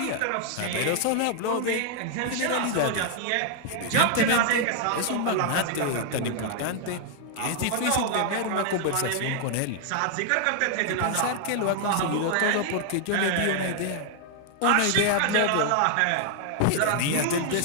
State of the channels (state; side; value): different; both; correlation 0.00